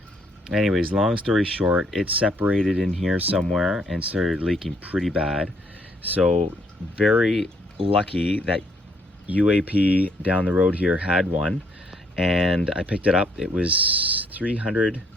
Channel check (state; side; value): normal; both; correlation 0.68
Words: Anyways, long story short, it separated in here somewhere and started leaking pretty bad. So very lucky that UAP down the road here had one, and I picked it up. It was 300